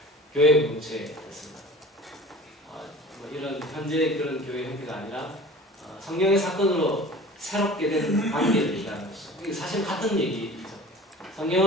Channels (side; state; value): both; normal; correlation 0.42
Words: 교회 공동체였습니다. 이런 현재 그런 교회 형태가 아니라 성령의 사건으로 새롭게 된 관계를 얘기하는 것이죠. 이게 사실 같은 얘기죠.